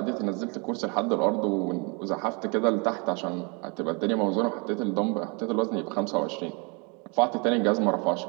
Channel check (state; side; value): quieter; left; 32.3 dB